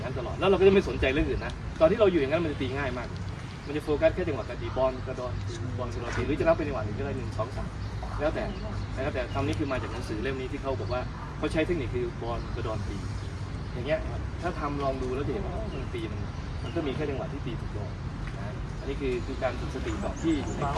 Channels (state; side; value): identical; both; correlation 1.00